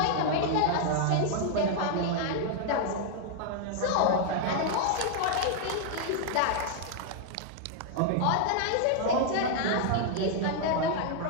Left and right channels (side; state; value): both; different; correlation 0.00